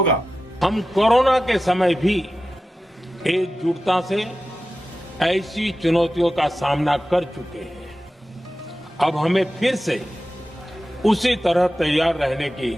हम कोरोना के समय भी एकजुटता से ऐसी चुनौतियों का सामना कर चुके हैं। अब हमें फिर से उसी तरह तैयार रहने की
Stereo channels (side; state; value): both; normal; correlation 0.93